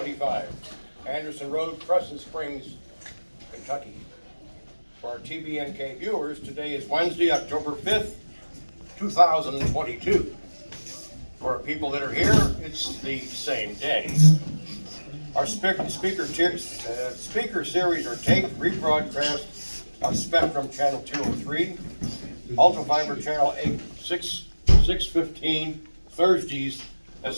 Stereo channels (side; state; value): both; inverted; correlation -1.00